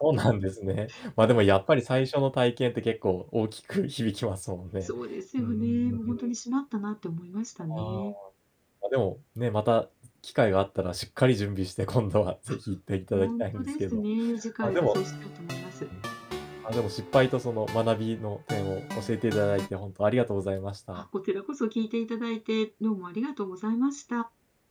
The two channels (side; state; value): both; identical; correlation 1.00